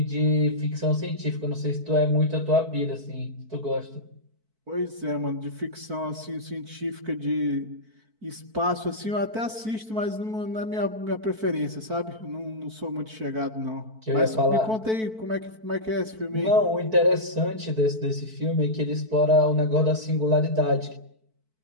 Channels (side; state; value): left; late; 4.5 ms